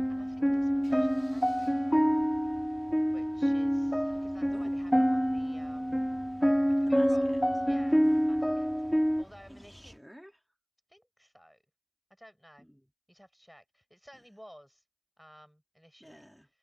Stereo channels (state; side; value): identical; both; correlation 1.00